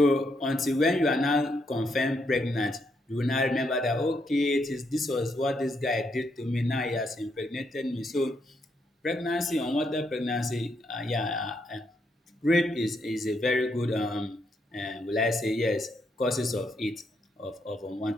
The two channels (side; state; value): both; normal; correlation 0.77